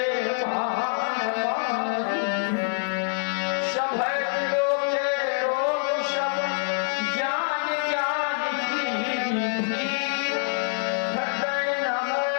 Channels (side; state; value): right; silent; digital silence